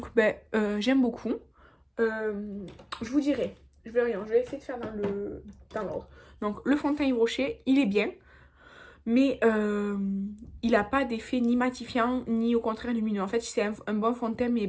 ben, j'aime beaucoup. Je vous dirai, je vais essayer de faire dans l'ordre. Donc, le fond de teint Yves Rocher, il est bien. Mais il n'a pas d'effet ni matifiant, ni au contraire lumineux. En fait, c'est un bon fond de teint, mais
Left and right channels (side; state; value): both; identical; correlation 1.00